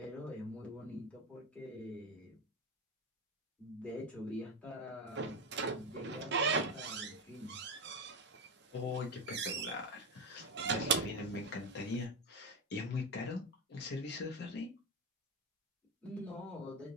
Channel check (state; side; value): normal; both; correlation 0.15